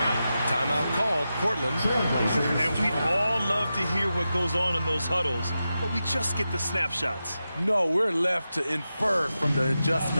Timeout called, Portland. And we'd all love to hear what goes on in those huddles, but we just get the snapshots. No, we're left to infer from the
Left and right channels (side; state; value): both; inverted; correlation -0.91